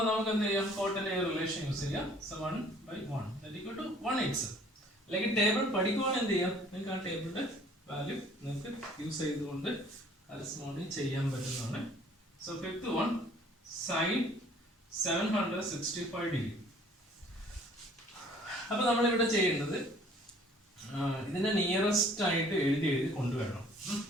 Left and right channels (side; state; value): both; normal; correlation 0.55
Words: നമുക്ക് എന്ത് ചെയ്യാം? കോട്ടിന്റെ റിലേഷൻ യൂസ് ചെയ്യാം. So 1/1 = 1/x. അല്ലെങ്കിൽ ടേബിൾ പഠിക്കുവാണെങ്കിൽ എന്ത് ചെയ്യാം? നിങ്ങൾക്ക് ആ ടേബിളിന്റെ വാല്യൂ നിങ്ങൾക്ക് യൂസ് ചെയ്തുകൊണ്ട് കറസ്പോണ്ടിങ് ചെയ്യാൻ പറ്റുന്നതാണ്. So fifth one, sine 765 degree. അപ്പൊ നമ്മളിവിടെ ചെയ്യേണ്ടത് ഇതിന്റെ നിയറസ്റ്റ് ആയിട്ട് എഴുതി കൊണ്ടുവരണം.